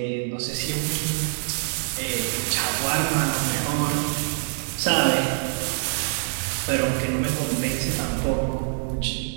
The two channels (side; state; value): left; silent; 62 dB below the other